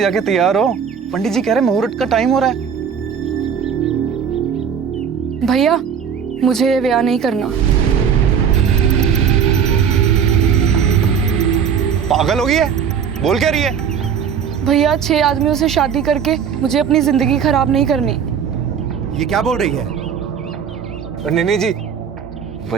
जाके तैयार हो, पंडित जी कह रहे मुहूर्त का टाइम हो रहा है। भैया मुझे ये ब्याह नहीं करना। पागल हो गई है, बोल क्या रही है? भैया 6 आदमियों से शादी करके मुझे अपनी जिंदगी खराब नहीं करनी। ये क्या बोल रही है? नहीं जी,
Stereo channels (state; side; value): quieter; left; 7.4 dB